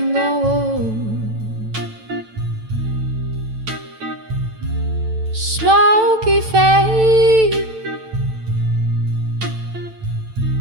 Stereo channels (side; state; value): left; late; 9.0 ms